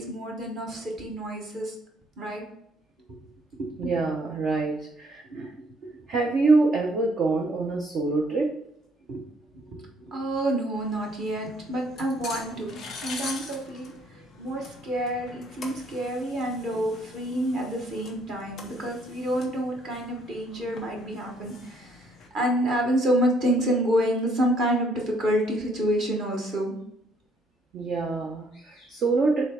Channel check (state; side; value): normal; both; correlation 0.66